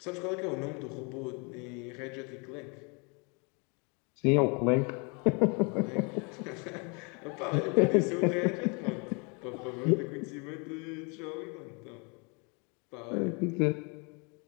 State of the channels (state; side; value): quieter; right; 32.8 dB